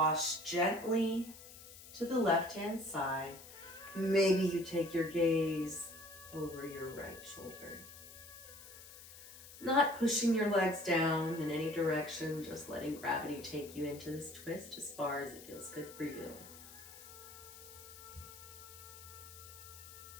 gently to the left-hand side. Maybe you take your gaze over your right shoulder. Not pushing your legs down in any direction, just letting gravity take you into this twist as far as it feels good for you.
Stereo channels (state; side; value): noise; left; hiss, 16 dB below the sound